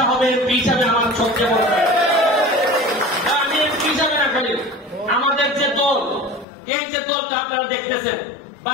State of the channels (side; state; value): right; drops out; at 6.5 s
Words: হবে এমপি হিসাবে আমার সবচেয়ে বড় আমি এমপি হিসাবে না খালি আমাদের যে দল এই যে দলটা আপনারা দেখতেছেন